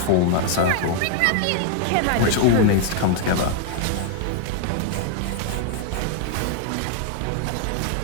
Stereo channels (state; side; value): different; both; correlation 0.00